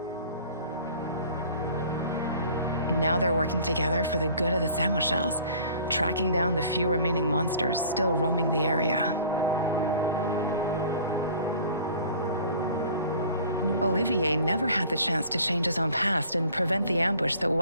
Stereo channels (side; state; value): both; inverted; correlation -0.48